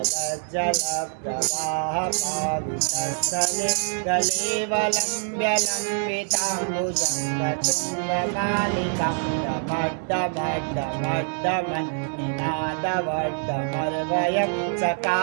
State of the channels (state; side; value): silent; left; 62 dB below the other